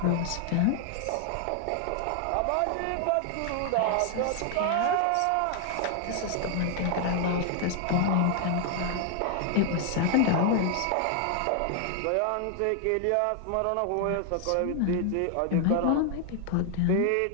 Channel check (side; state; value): both; different; correlation 0.00